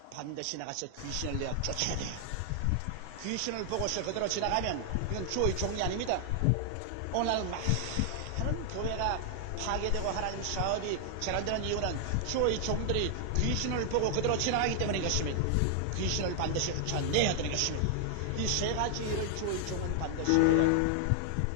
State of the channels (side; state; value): both; different; correlation 0.00